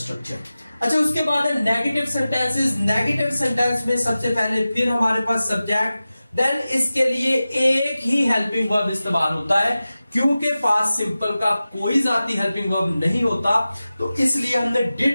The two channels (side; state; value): both; inverted; correlation -0.95